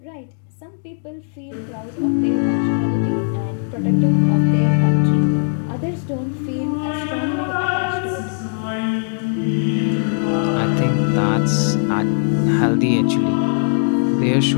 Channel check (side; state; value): right; silent; digital silence